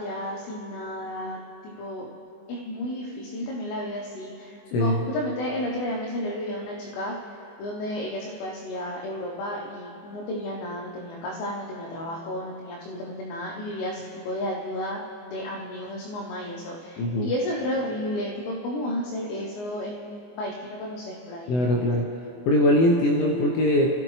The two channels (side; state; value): right; late; 24 ms